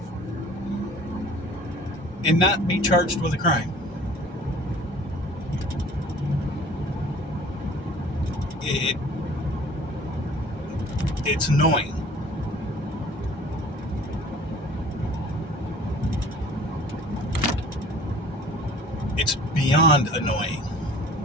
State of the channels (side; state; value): both; normal; correlation 0.49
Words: and not be charged with a crime. It's annoying. It's beyond annoying.